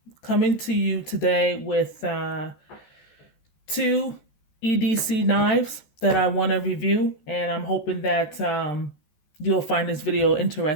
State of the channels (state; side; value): late; right; 14 ms